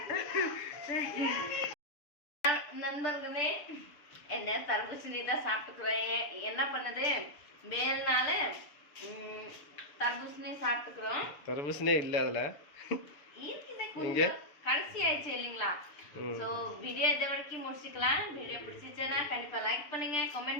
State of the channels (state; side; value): late; right; 6.9 ms